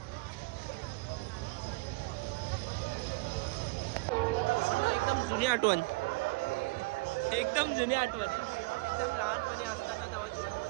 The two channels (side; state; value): left; quieter; 26.1 dB